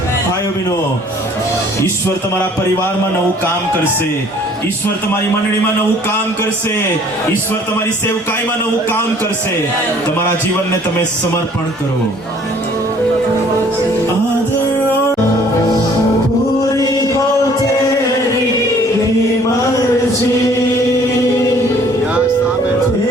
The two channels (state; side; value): normal; both; correlation 0.56